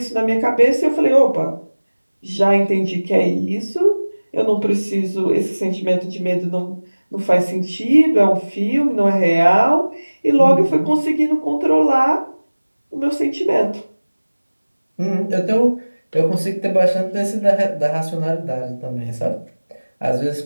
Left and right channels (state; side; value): inverted; both; correlation -1.00